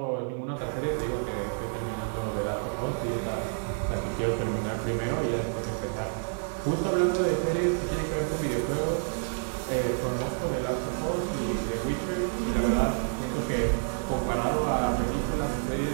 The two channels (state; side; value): silent; left; 59 dB below the other